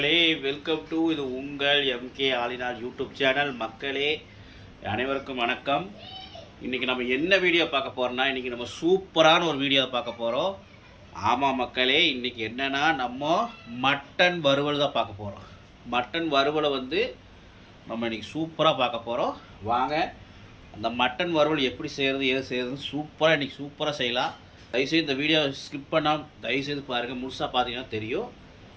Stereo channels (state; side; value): identical; both; correlation 1.00